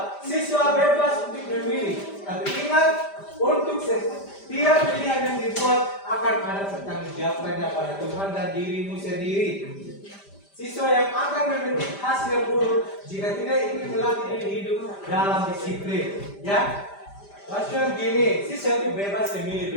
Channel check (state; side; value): late; right; 5.0 ms